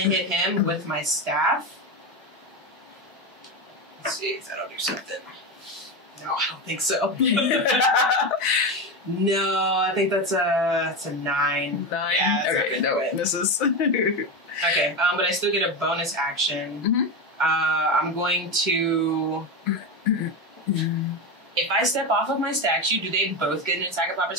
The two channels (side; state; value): both; normal; correlation 0.16